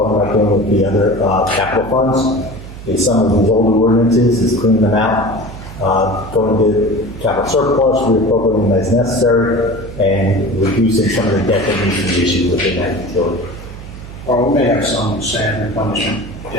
about doing with the other capital funds, is some of these older ordinances, is cleaning them out, going to capital surplus, reappropriating them as necessary, and reducing some of the debt that needs to be issued within that utility. Well, we may have some sand replenishment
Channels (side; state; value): right; noise; hum, 14 dB below the sound